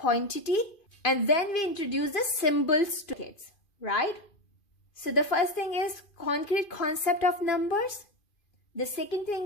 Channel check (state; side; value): late; right; 2.5 ms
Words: and then we introduce the symbols to kids, right? So the first thing is concrete concept of numbers. The second